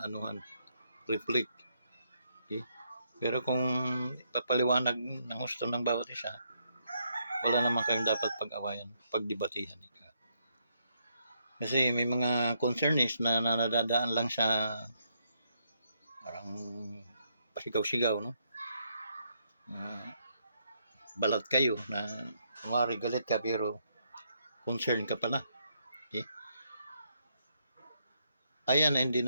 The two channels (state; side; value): inverted; both; correlation -0.76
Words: reflect. Okay? Pero kung papaliwanag ng gusto ng bawat isa, wala naman kayong dapat pag-awayan, pagdebatihan. Kasi may mga concernees na nadadaan lang sa parang pasigaw-sigaw, no? Balat kayo na kumari galit ka pero concern ka pala. Okay? Ayan, hindi